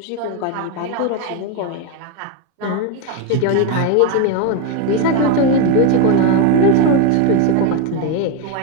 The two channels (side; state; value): both; different; correlation 0.02